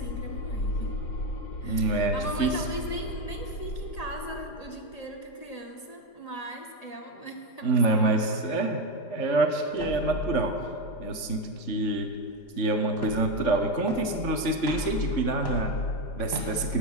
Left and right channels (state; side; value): late; right; 4.9 ms